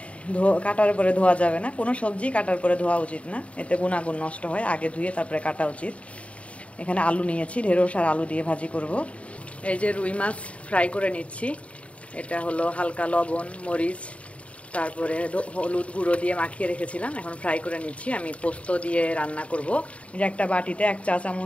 কাটার পরে ধোয়া যাবে না, কোনো সবজি কাটার পরে ধোয়া উচিত না, এতে গুণাগুণ নষ্ট হয়, আগে ধুয়ে তারপরে কাটা উচিত। এখানে আলু নিয়েছি, ঢেঁড়স আর আলু দিয়ে ভাজি করব। এই যে রুই মাছ ফ্রাই করে নিচ্ছি। এটা হলো হালকা লবণ, মরিচ, তারপরে হলুদ গুঁড়ো দিয়ে মাখিয়ে রেখেছিলাম, এখন ফ্রাই করে নিচ্ছি। আমি পোস্ত দিয়ে রান্না করব। যে একটা বাটিতে 1 চা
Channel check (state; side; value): late; right; 0.064 ms